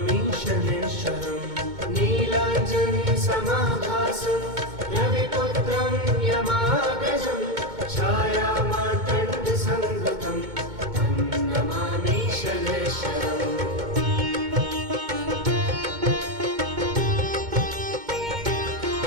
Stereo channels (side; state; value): left; late; 2.2 ms